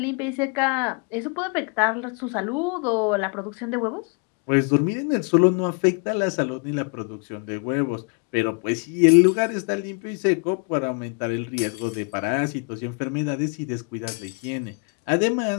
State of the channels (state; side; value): quieter; right; 34.8 dB